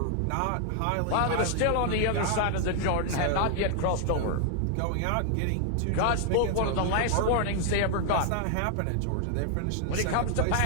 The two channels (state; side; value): different; both; correlation 0.00